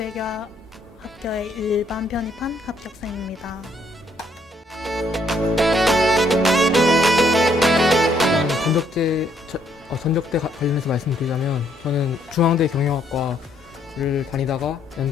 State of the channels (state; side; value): normal; both; correlation 0.69